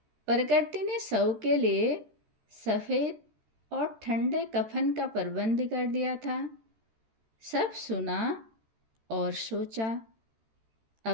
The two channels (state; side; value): late; left; 13 ms